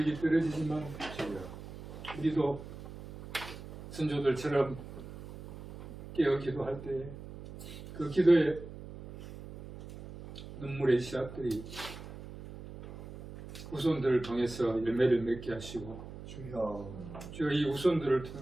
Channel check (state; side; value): noise; right; hum, 13 dB below the sound